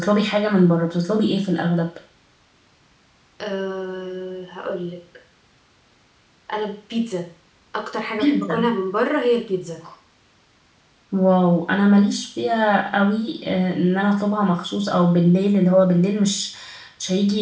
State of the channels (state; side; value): identical; both; correlation 1.00